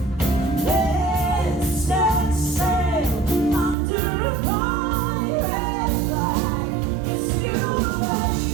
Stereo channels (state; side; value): drops out; left; at 3.8 s